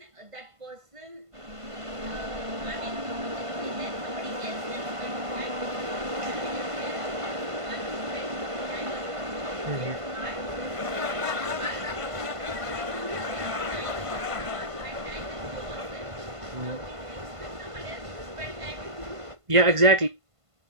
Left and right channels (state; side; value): late; left; 1.5 ms